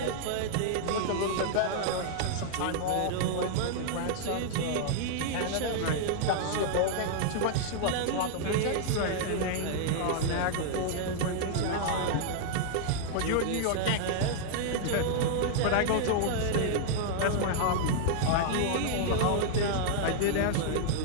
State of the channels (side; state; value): both; different; correlation -0.01